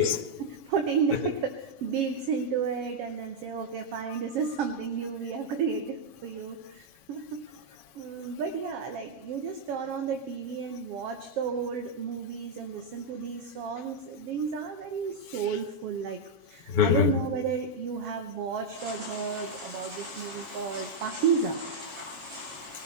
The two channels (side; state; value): left; late; 7.3 ms